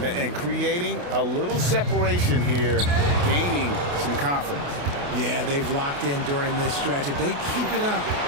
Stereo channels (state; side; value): late; left; 28 ms